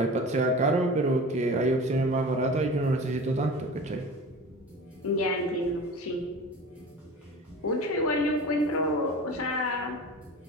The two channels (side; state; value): both; normal; correlation 0.35